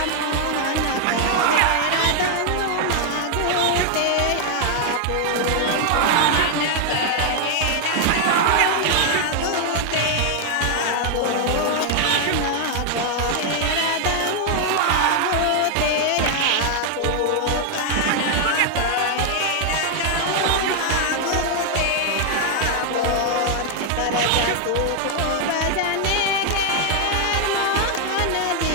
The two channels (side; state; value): both; different; correlation 0.00